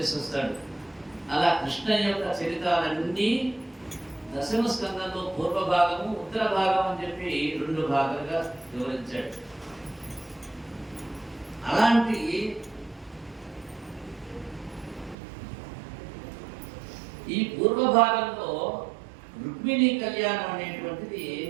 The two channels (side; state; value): left; drops out; at 15.2 s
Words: అలా కృష్ణయ్య యొక్క చరితాలన్నీ దశమ స్కందంలో పూర్వ భాగము ఉత్తర భాగం అని చెప్పి 2 భాగాలుగా వివరించాడు. అలాంటి ఈ పూర్వ భాగంలో రుక్మిణీ కళ్యాణం అనేటువంటిది